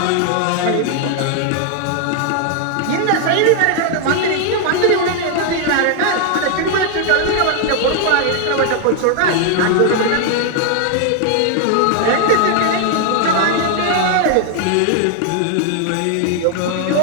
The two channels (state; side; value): different; both; correlation 0.00